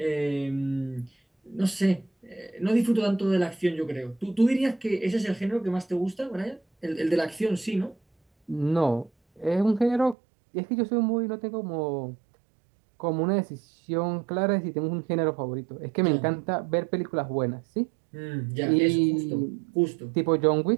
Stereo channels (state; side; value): drops out; left; at 10.2 s